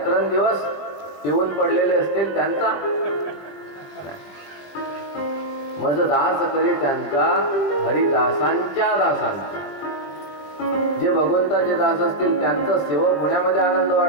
पिऊन पडलेले असतील त्यांचा, माझं दास करी त्यांचा, हरिदासांच्या दासांचा। जे भगवंताचे दास असतील त्यांचा सेवक होण्यामध्ये आनंद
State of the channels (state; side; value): late; right; 21 ms